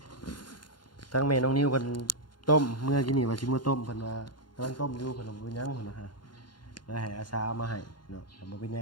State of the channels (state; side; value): late; right; 0.71 ms